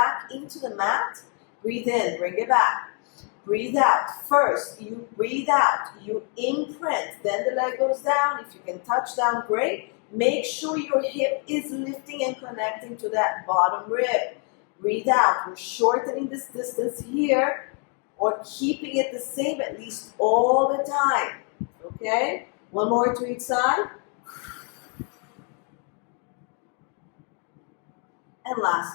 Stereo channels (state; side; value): quieter; right; 39.6 dB